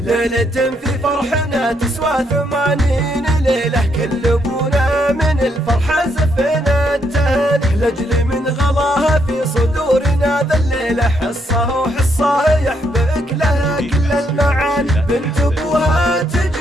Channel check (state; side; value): normal; both; correlation 0.75